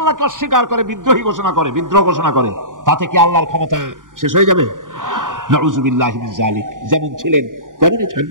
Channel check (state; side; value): late; left; 0.89 ms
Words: অস্বীকার করে, বিদ্রোহী ঘোষণা করে, বিদ্রোহ ঘোষণা করে, তাতে কি আল্লাহর ক্ষমতা শেষ হয়ে যাবে? নাউযুবিল্লাহি মিন যালিক। যেমন ছিলেন তেমনই